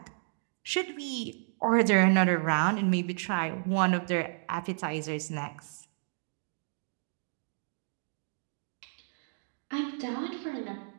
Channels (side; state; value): left; silent; digital silence